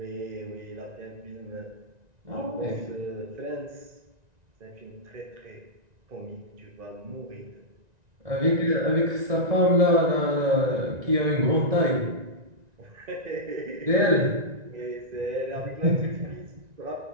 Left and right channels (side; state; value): left; late; 1.9 ms